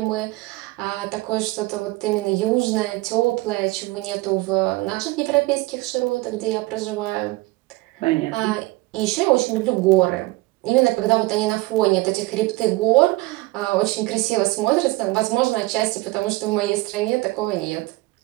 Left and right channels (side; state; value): left; quieter; 21.2 dB